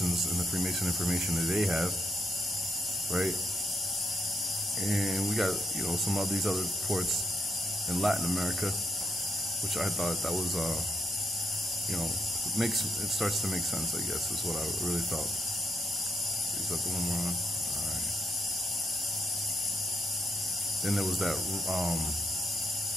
and the Freemason information that they have, right? And we got, you know, some of these other ports in Latin America, which I thought that was, you know, it starts to make sense, I guess, is what I really felt. Is that the one we're on? All right. Then there was that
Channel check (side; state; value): both; normal; correlation 0.78